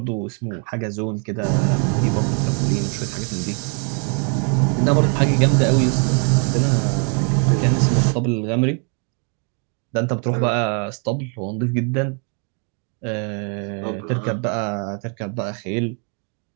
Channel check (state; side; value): quieter; left; 39.7 dB